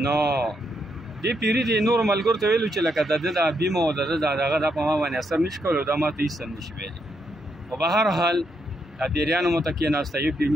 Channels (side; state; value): both; normal; correlation 0.78